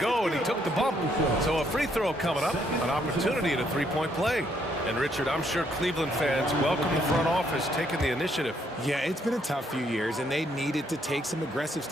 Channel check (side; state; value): both; normal; correlation 0.71